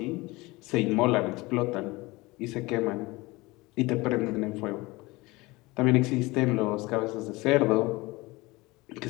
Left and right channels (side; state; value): right; quieter; 22.1 dB